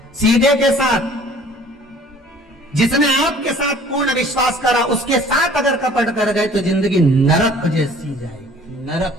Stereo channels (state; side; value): normal; both; correlation 0.52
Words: सीधे के साथ, जिसने आपके साथ पूर्ण विश्वास करा, उसके साथ अगर कपट कर गए तो जिंदगी नरक जैसी जाएगी,